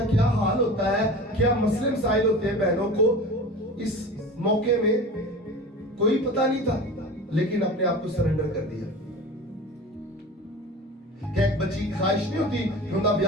क्या हाल होता है, क्या मसले मसाइल होते हैं बहनों को। इस मौके में कोई पता नहीं था, लेकिन अपने आप को सरेंडर कर दिया। क्या एक बच्ची की ख्वाहिश नहीं होती कि उनका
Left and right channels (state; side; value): normal; both; correlation 0.35